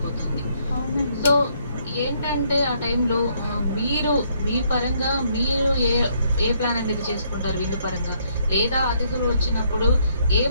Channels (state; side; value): inverted; both; correlation -0.70